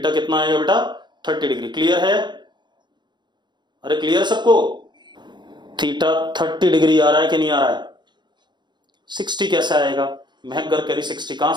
कितना आएगा बेटा, 30 डिग्री। क्लियर है? अरे क्लियर सबको? थीटा 30 डिग्री आ रहा है कि नहीं आ रहा है? 60 कैसे आएगा? महक गर्ग कह रही 60, कहां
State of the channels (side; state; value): left; late; 0.22 ms